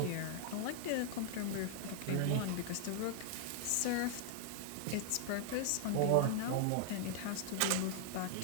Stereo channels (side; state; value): both; different; correlation 0.00